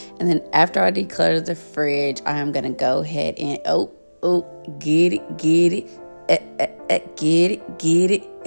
And then after I declutter the fridge, I am going to go ahead and, get it, get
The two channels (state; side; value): inverted; both; correlation -1.00